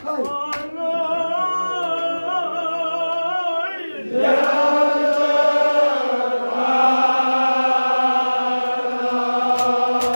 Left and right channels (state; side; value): inverted; both; correlation -1.00